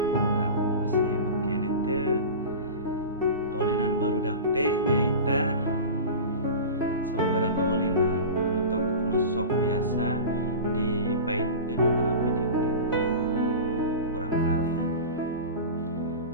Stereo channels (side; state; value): both; inverted; correlation -0.31